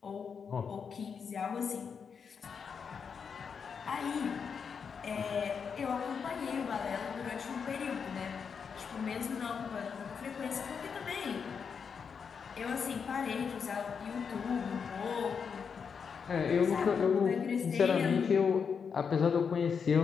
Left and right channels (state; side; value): quieter; right; 6.3 dB